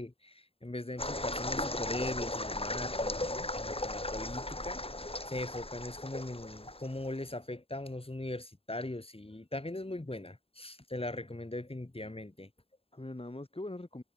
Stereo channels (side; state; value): right; late; 0.28 ms